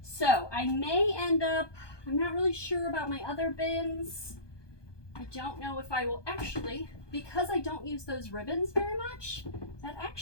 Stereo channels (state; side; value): late; right; 1.2 ms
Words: So I may end up, I'm not really sure about my other bins. I don't know if I will actually, because I don't use those ribbons very much, that